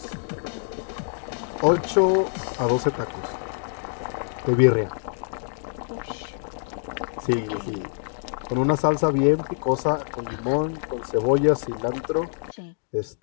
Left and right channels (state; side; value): silent; right; digital silence